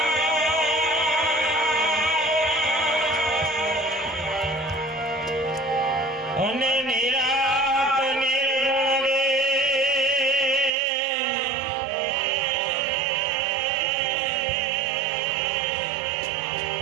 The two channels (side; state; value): left; drops out; at 10.7 s